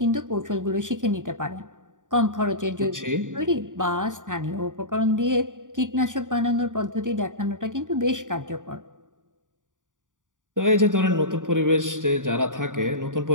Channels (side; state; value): left; late; 0.88 ms